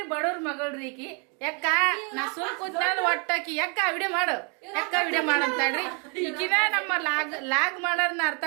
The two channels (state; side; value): quieter; left; 36.1 dB